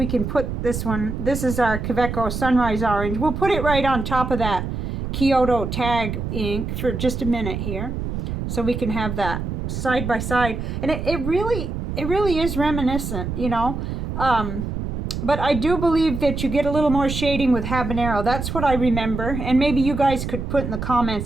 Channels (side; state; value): right; noise; rumble, 4 dB below the sound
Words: can put this one, this is our Kvitko Sunrise Orange. We'll put it right on top of that Kyoto tag ink for just a minute here. So we can have that side by side. And it really is reminiscent, you know. But I do believe that you get a little more shading with Habanero. That's what I remember. And maybe you guys could put in the